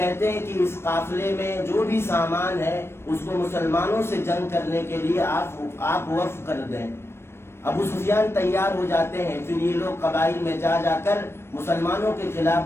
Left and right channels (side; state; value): right; late; 0.12 ms